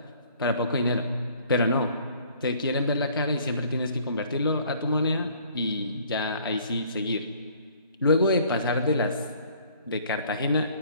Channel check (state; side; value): inverted; both; correlation -0.57